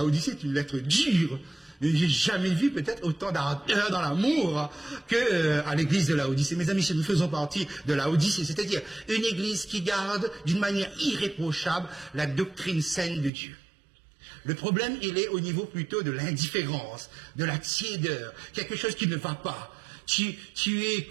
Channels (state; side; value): drops out; left; at 13.3 s